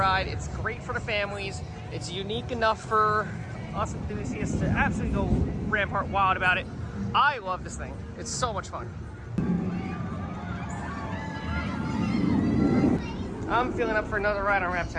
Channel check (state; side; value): identical; both; correlation 1.00